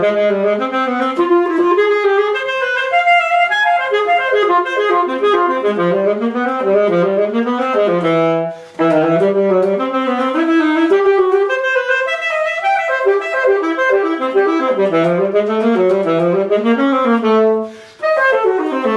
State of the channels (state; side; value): identical; both; correlation 1.00